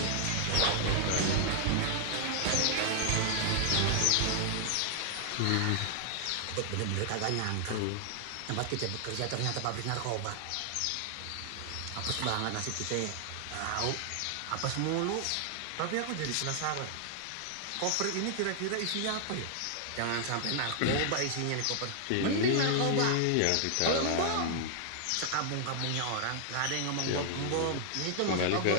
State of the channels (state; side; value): different; both; correlation 0.00